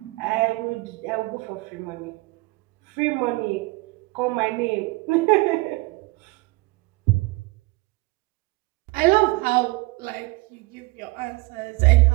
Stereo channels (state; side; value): quieter; left; 24.2 dB